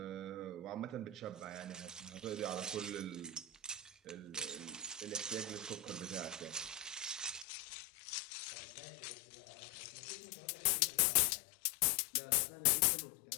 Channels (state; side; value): drops out; right; at 7.5 s